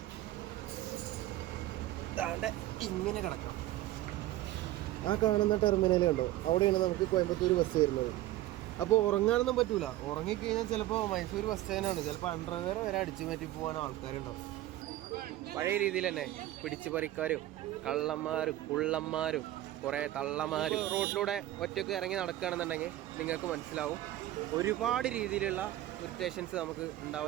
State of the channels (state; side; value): quieter; left; 14.9 dB